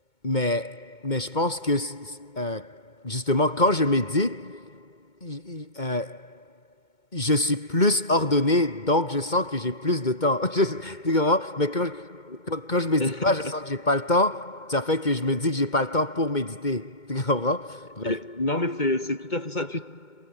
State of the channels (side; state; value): right; late; 2.2 ms